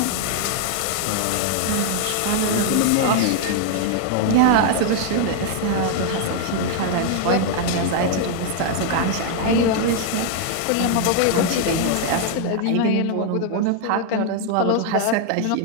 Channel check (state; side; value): different; both; correlation 0.00